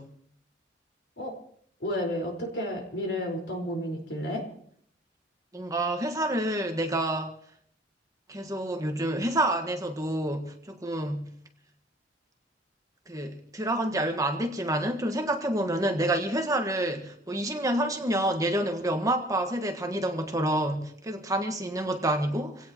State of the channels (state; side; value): normal; both; correlation 0.52